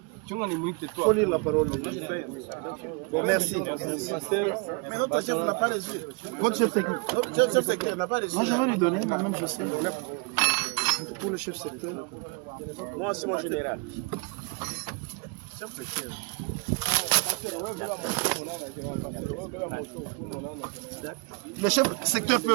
Faut lire la parole. Bon, merci. Mais notre chef n'a pas les yeux. Votre chef secteur n'a pas les yeux. Moi, je vais lui donner, quand même, je sais. Pour le chef secteur. Moi, c'est mon général. Chef secteur. Le chef secteur peut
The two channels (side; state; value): left; quieter; 31.8 dB